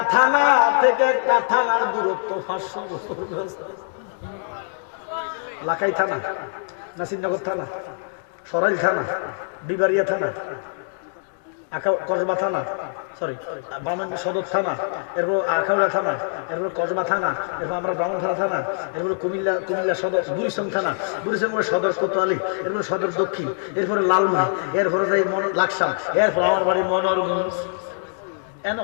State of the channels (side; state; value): right; silent; digital silence